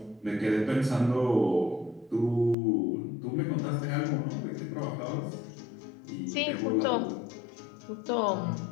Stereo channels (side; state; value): right; drops out; at 2.6 s